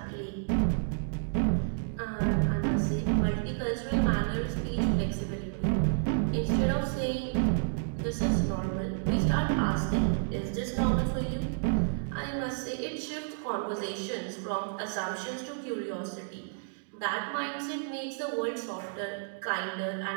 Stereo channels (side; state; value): left; silent; digital silence